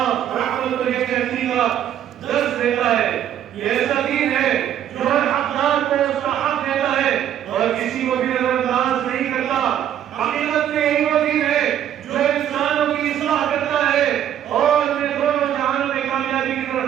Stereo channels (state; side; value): quieter; left; 10.5 dB